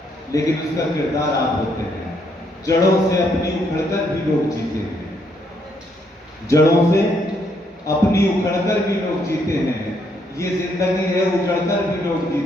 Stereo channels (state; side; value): normal; both; correlation 0.73